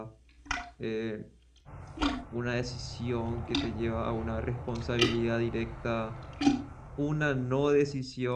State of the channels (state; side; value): identical; both; correlation 1.00